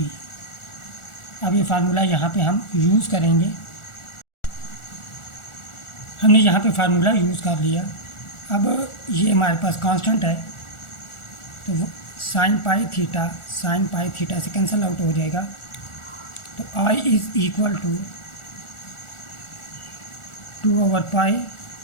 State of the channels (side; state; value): right; late; 1.4 ms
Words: अब ये फार्मूला यहाँ पे हम यूज़ करेंगे। हमने यहाँ पे फार्मूला यूज़ कर लिया। अब ये हमारे पास कांस्टेंट है, तो साइन पाई थीटा से कैंसिल आउट हो जाएगा। तो I इज़ इक्वल टू 2/पाई,